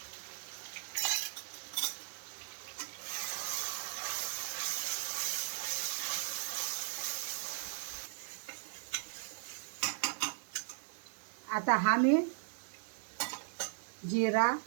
आता हा मी जीरा,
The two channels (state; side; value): silent; left; 53 dB below the other